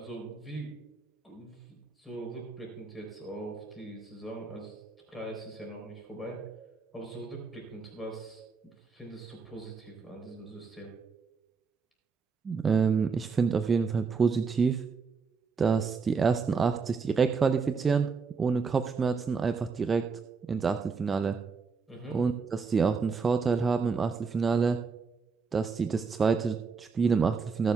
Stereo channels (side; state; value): left; quieter; 5.1 dB